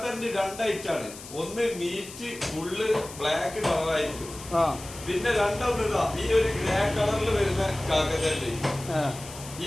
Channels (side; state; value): left; noise; hiss, 14 dB below the sound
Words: 2 ഐറ്റാണ്. ഒന്ന് മീറ്റ് ഫുള്ള് ബ്ലാക്ക് കളറായിരിക്കും. പിന്നെ രണ്ടൊന്നിതാ ഈ ഒരു ഗ്രേ കളറിൽ വരുന്ന കാക്കത്തരണ്ടി.